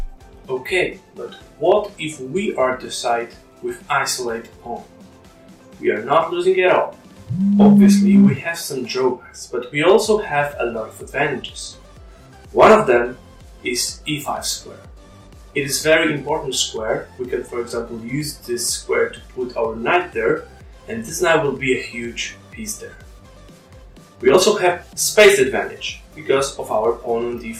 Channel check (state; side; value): identical; both; correlation 1.00